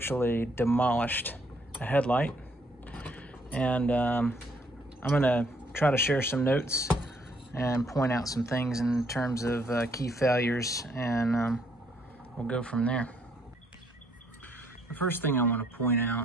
demolished a headlight. And I'm gonna try to share some notes and point out some things in terms of key failures, and we'll go from there. The first thing I want to point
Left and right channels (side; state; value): both; normal; correlation 0.68